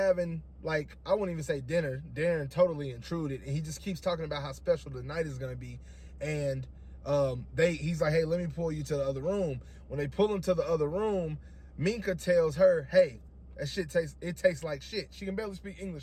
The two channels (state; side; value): identical; both; correlation 1.00